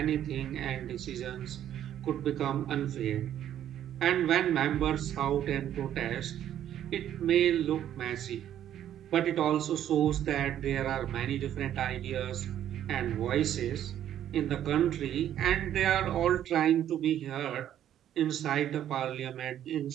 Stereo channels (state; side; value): quieter; left; 10.9 dB